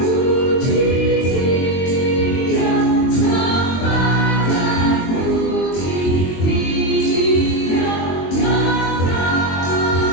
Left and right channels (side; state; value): right; late; 22 ms